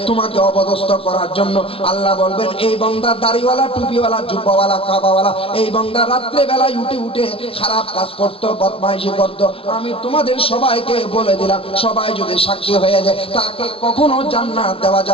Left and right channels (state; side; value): late; right; 0.27 ms